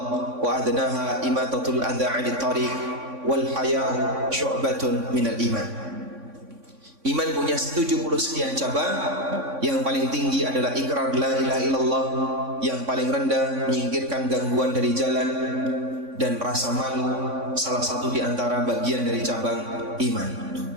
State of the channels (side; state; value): left; late; 3.6 ms